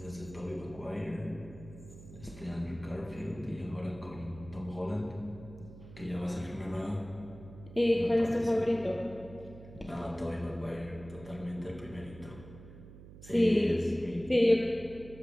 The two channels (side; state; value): right; noise; hum, 17 dB below the sound